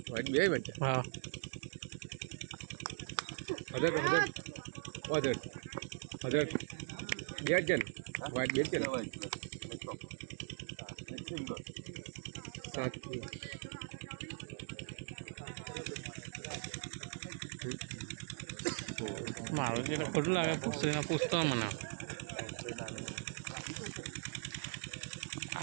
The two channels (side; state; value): left; silent; 51 dB below the other